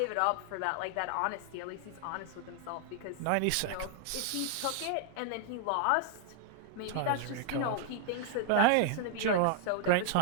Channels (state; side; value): different; both; correlation 0.00